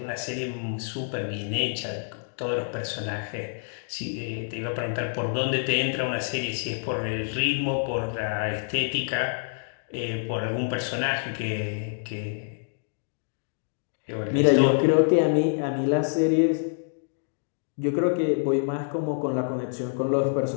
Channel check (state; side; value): silent; right; digital silence